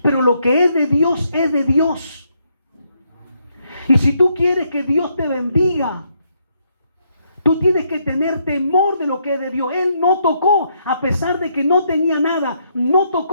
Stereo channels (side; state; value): both; inverted; correlation -0.75